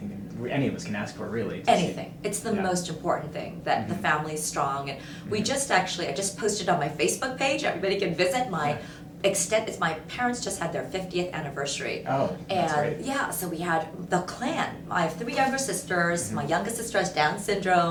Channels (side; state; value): both; identical; correlation 1.00